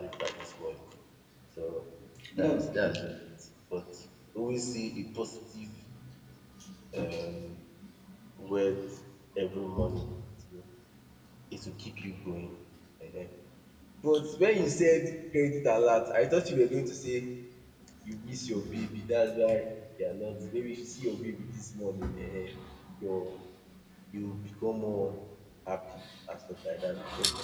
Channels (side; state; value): both; identical; correlation 1.00